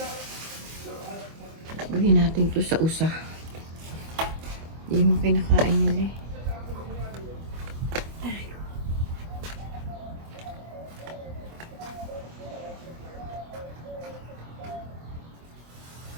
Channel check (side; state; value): left; late; 25 ms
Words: Bigyan natin to sa usa. Hindi mo kinakain nila eh.